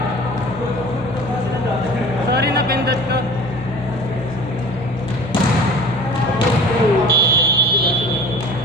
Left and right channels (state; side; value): normal; both; correlation 0.42